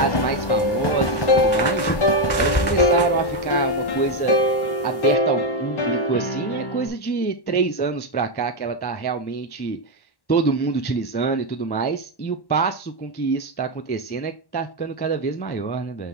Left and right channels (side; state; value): right; late; 1.1 ms